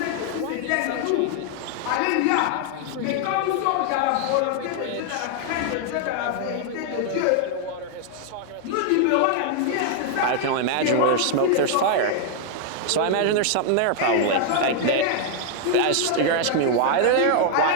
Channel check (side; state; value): both; different; correlation 0.00